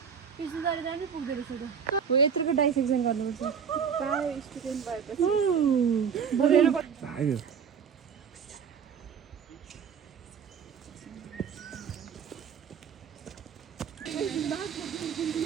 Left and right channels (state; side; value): quieter; left; 7.0 dB